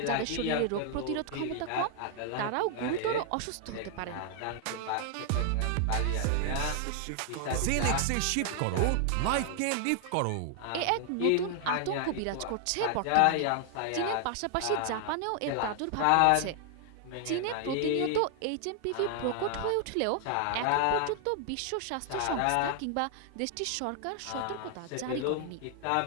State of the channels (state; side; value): different; both; correlation 0.00